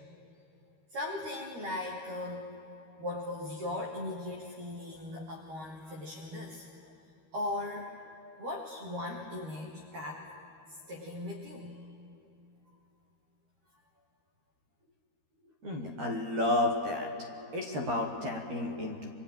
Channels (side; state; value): left; late; 13 ms